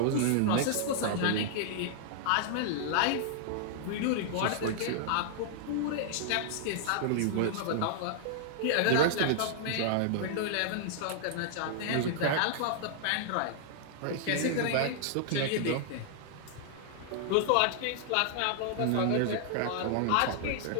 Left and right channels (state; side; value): different; both; correlation -0.01